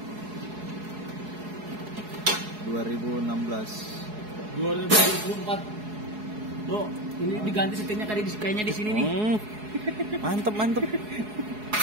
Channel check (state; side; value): late; left; 4.7 ms